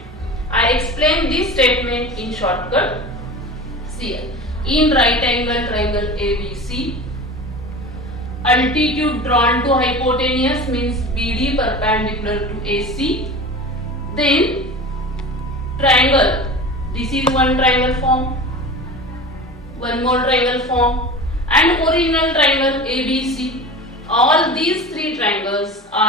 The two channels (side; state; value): both; normal; correlation 0.33